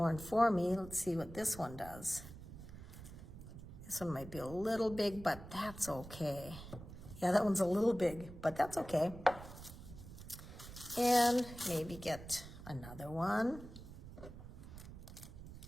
for me. Let's see what this one does. This one might be a little big, but that's okay. Yeah, that one's a little big, but that's okay. And maybe get another one.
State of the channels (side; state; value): right; noise; rumble, 14 dB below the sound